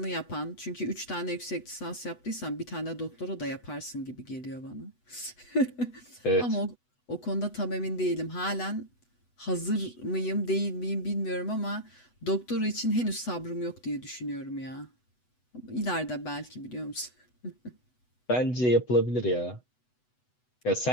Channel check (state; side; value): late; right; 8.0 ms